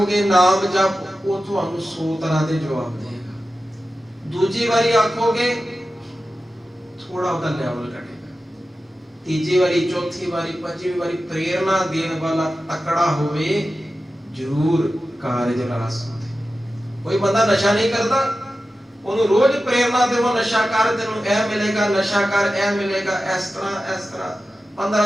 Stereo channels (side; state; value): both; normal; correlation 0.93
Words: ਨਾਮ ਜਪ, ਉਹ ਤੁਹਾਨੂੰ 100 ਤਰ੍ਹਾਂ ਦੇ ਜਵਾਬ ਦੇਗਾ। ਦੂਜੀ ਵਾਰੀ ਆਖੋਗੇ ਥੋੜਾ ਉਹਦਾ ਲੈਵਲ ਘਟੇਗਾ। ਤੀਜੀ ਵਾਰੀ, ਚੌਥੀ ਵਾਰੀ, ਪੰਜਵੀਂ ਵਾਰੀ ਪ੍ਰੇਰਣਾ ਦੇਣ ਵਾਲਾ ਤਕੜਾ ਹੋਵੇ, ਜ਼ਰੂਰ ਕਾਰਜ ਰਾਸ ਹੁੰਦੇ। ਕੋਈ ਬੰਦਾ ਨਸ਼ਾ ਨਹੀਂ ਕਰਦਾ, ਉਹਨੂੰ ਰੋਜ਼ ਪ੍ਰੇਰਣਾ ਦੇਵੋ, ਨਸ਼ਾ ਕਰ, ਤੈਨੂੰ ਇਹ ਮਿਲੇਗਾ, ਨਸ਼ਾ ਕਰ, ਇਹ ਮਿਲੇਗਾ, ਇਸ ਤਰ੍ਹਾਂ